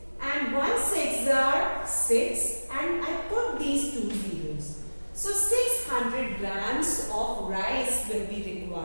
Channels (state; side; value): inverted; both; correlation -1.00